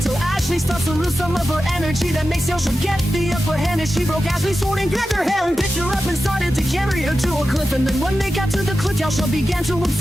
Ashley starts to lose some of her energy that makes Yelsha get the upper hand. As she broke Ashley's sword and grabbed her hand, picked her up and started to carry her to a cliff. And then when they got to the cliff, Yelsha began to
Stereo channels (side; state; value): both; normal; correlation 0.92